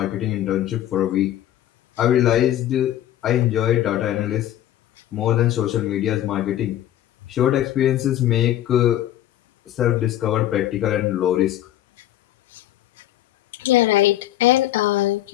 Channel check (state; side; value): quieter; right; 12.6 dB